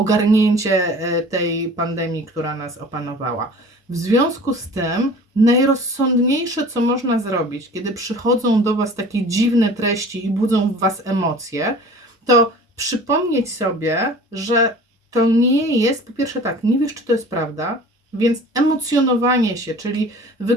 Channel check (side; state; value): both; normal; correlation 0.43